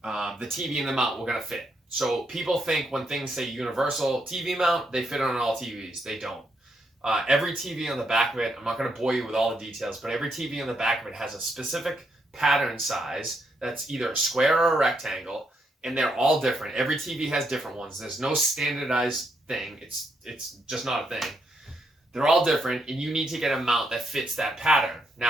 TV and the mount were going to fit? So people think when things say universal TV mount, they fit on all TVs. They don't. Every TV on the back of it, I'm not going to bore you with all the details, but every TV on the back of it has a specific pattern size that's either a square or a rectangle, and they're all different. Every TV has different ones. There's no standardized thing. It's just not a thing. They're all different, and you need to get a mount that fits that pattern.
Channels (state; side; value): normal; both; correlation 0.78